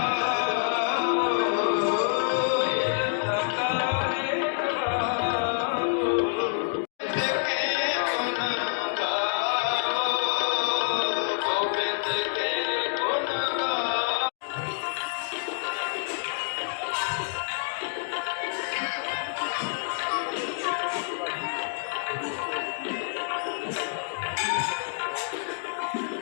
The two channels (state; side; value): silent; right; digital silence